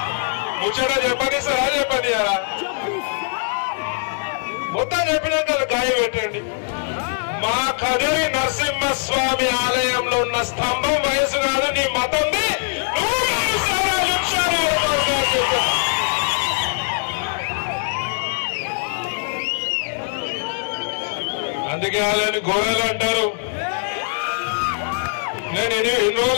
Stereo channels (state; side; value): silent; right; digital silence